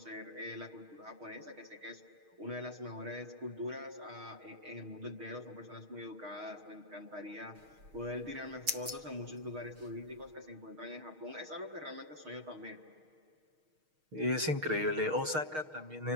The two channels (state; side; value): late; left; 6.4 ms